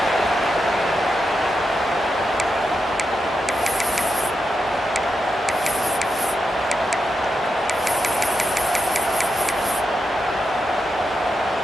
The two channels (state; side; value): normal; both; correlation 0.86